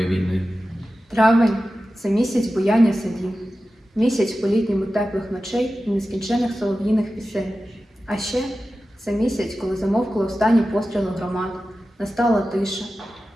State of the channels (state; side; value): normal; both; correlation 0.94